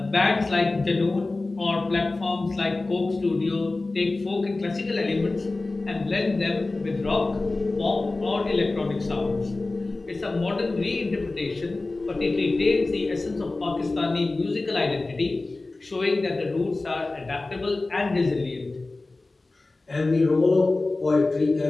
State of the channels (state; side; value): quieter; right; 3.2 dB